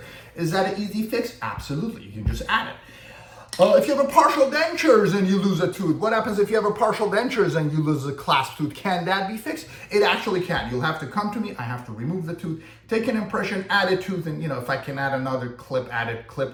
Is that an easy fix? Absolutely, you can just add it. If you have a partial dentures and you lose a tooth, what happens if you have a partial dentures and you lose a clasp tooth? Can that be fixed? It actually can. You'll have to come to me, I have to remove the tooth, take an impression, add a tooth, and if I can add another clip, add a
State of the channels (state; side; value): identical; both; correlation 1.00